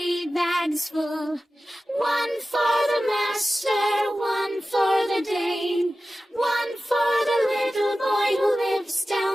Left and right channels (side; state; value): both; normal; correlation 0.95